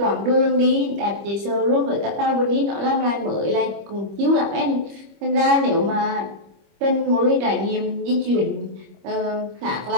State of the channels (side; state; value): left; late; 25 ms